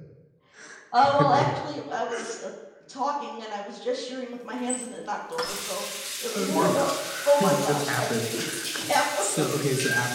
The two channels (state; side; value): identical; both; correlation 1.00